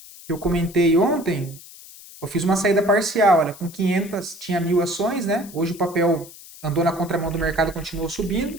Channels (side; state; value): left; noise; hiss, 18 dB below the sound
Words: Eu comentei ontem. Eu fiz uma saída parcial, olha, com 500, tinha 1.000 ações, né? Hoje o papel andou na contramão do mercado, continuou